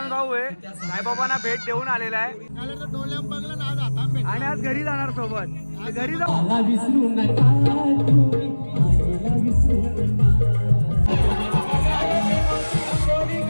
भाऊ आहे साईबाबांना भेट देऊन आलेला आहे आणि आज घरी जाणार सोबत. घरी जाऊ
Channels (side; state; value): both; inverted; correlation -1.00